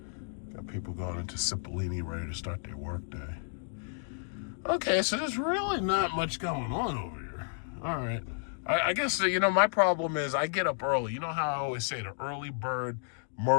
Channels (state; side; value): silent; right; digital silence